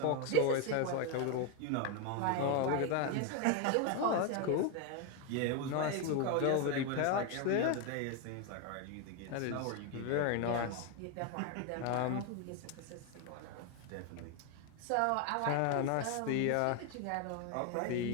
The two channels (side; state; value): both; different; correlation 0.01